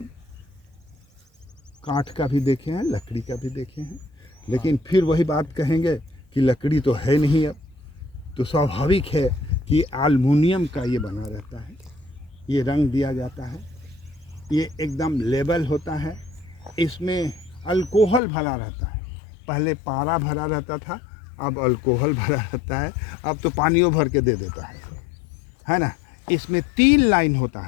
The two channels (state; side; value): drops out; right; at 18.2 s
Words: काठ का भी देखे हैं, लकड़ी का भी देखे हैं, लेकिन फिर वही बात कहेंगे कि लकड़ी तो है नहीं। अब तो स्वाभाविक है कि एल्युमिनियम का ये बना रहता है, ये रंग दिया जाता है, ये एकदम लेबल होता है। इसमें अल्कोहल भरा रहता है। पहले पारा भरा रहता था, अब अल्कोहल भरा रहता है, अब तो पानियों भर के दे देता है ना। इसमें 3 लाइन होता